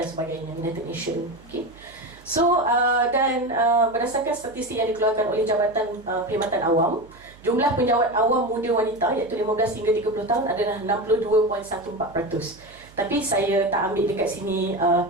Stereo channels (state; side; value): noise; right; hum, 25 dB below the sound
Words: sebagainya, United Nations. Okay. So dan berdasarkan statistik yang dikeluarkan oleh Jabatan Perkhidmatan Awam, jumlah penjawat awam muda wanita iaitu 15 hingga 30 tahun adalah 62.14%. Tapi saya tak ambil dekat sini